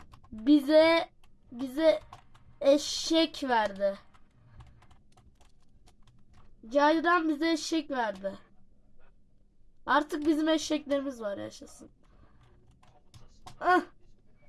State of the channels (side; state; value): both; identical; correlation 1.00